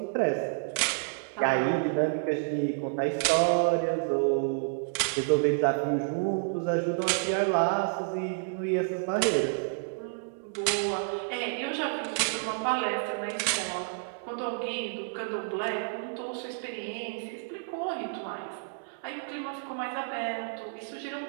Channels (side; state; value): left; silent; digital silence